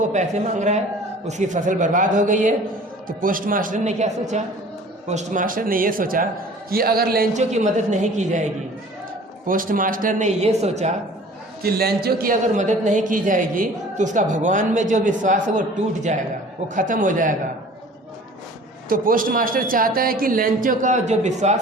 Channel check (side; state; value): both; normal; correlation 0.47